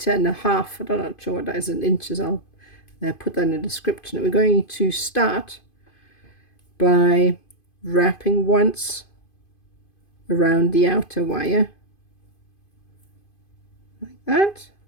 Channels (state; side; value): late; right; 2.5 ms